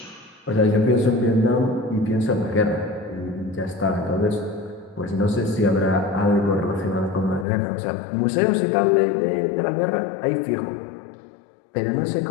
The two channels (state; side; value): drops out; right; at 7.5 s